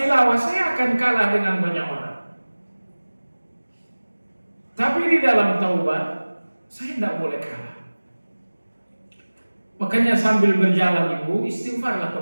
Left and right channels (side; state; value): both; inverted; correlation -1.00